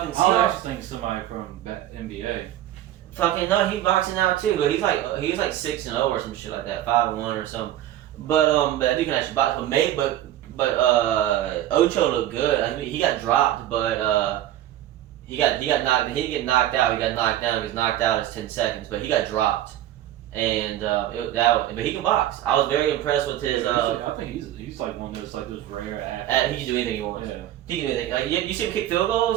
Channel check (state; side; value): quieter; left; 12.9 dB